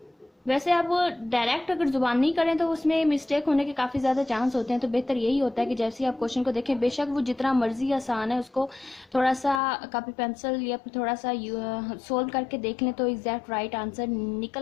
वैसे आप डायरेक्ट अगर जुबान नहीं करें तो उसमें मिस्टेक होने के काफ़ी ज़्यादा चांस होते हैं। तो बेहतर यही होता है कि जैसे ही आप क्वेश्चन को देखें, बेशक वो जितना मर्जी आसान है, उसको थोड़ा सा कॉपी पेंसिल या फिर थोड़ा सा सोल्व करके देख लें तो एग्जैक्ट राइट आंसर निकल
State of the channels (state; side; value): drops out; right; at 9.6 s